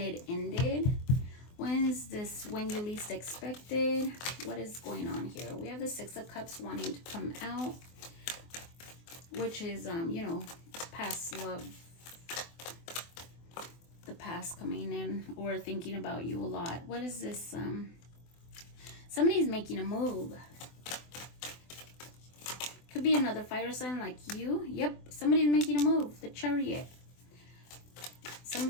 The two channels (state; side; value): late; right; 24 ms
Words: ended. When is this when you least expected? What is going on here? We have the Six of Cups wanting to come out, which is, you know, past love, the past coming in, or thinking about you a lot. What is this? Somebody's making a move. Could be another fire sign like you. Yep, somebody's making a move. The Chariot.